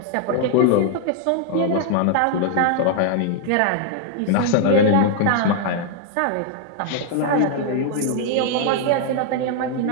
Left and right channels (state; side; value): different; both; correlation 0.00